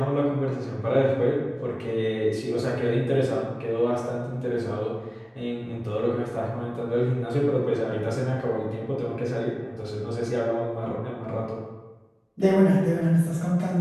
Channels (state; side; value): identical; both; correlation 1.00